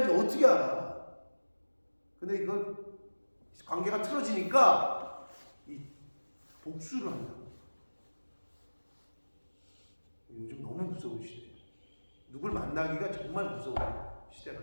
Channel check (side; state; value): both; inverted; correlation -1.00